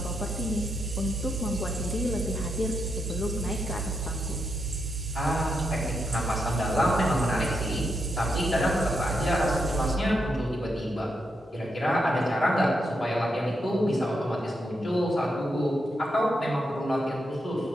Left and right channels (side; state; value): both; normal; correlation 0.82